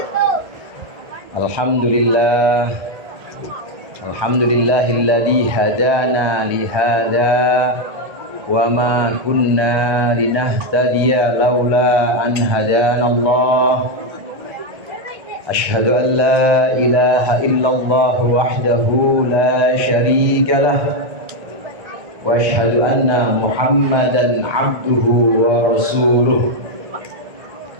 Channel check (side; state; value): left; late; 1.2 ms